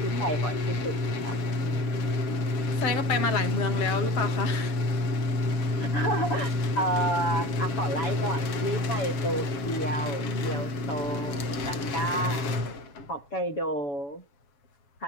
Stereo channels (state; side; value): late; right; 7.1 ms